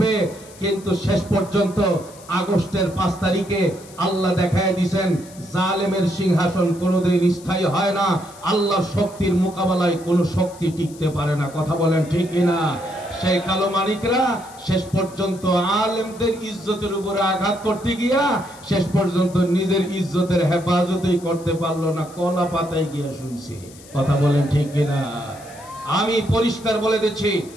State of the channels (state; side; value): noise; left; hiss, 21 dB below the sound